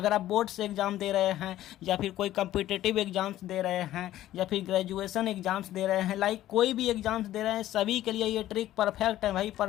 आप बोर्ड से एग्जाम दे रहे हैं या फिर कोई कॉम्पिटिटिव एग्जाम्स दे रहे हैं या फिर ग्रेजुएशन एग्जाम्स दे रहे हैं, लाइक कोई भी एग्जाम्स दे रहे हैं, सभी के लिए ये ट्रिक परफेक्ट है भाई,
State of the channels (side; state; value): right; quieter; 13.8 dB